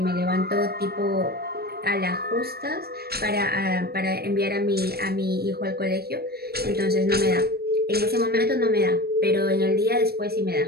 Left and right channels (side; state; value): left; late; 0.46 ms